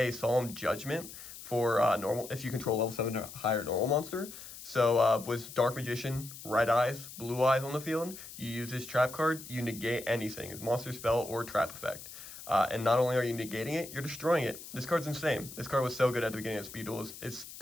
Solemn Judgment for normal, if you control level 7 or higher normal monster. So with Dark Magician, Red Eyes, Blue Eyes on the field, you use this trap card, you negate anything, monster spell or trap effect. And not only are you negating it, you're destroying it. This card's insane. This card was so good at the beginning of Speed Duels. It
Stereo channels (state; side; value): noise; left; hiss, 14 dB below the sound